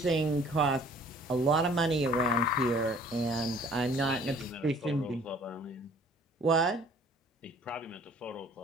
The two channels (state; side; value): normal; both; correlation 0.53